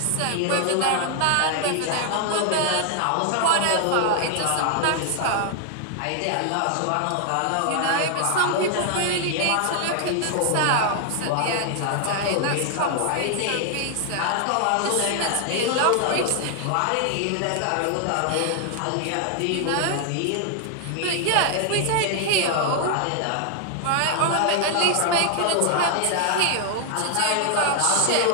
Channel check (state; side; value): different; both; correlation 0.00